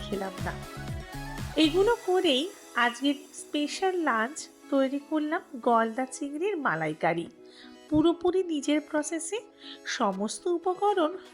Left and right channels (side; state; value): both; identical; correlation 1.00